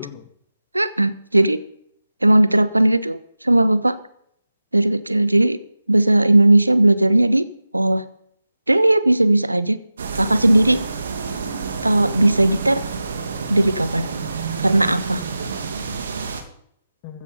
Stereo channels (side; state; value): both; inverted; correlation -0.97